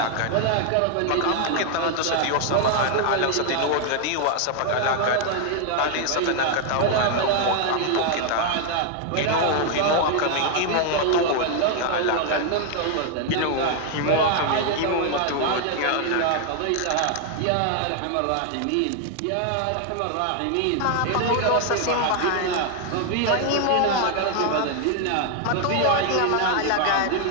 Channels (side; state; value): both; different; correlation 0.00